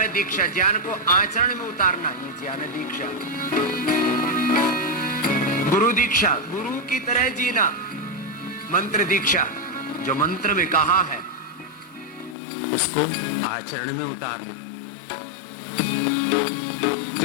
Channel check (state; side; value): drops out; right; at 12.4 s